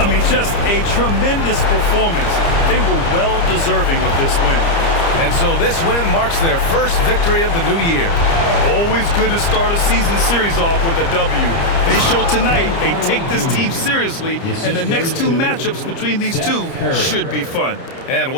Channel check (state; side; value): late; right; 30 ms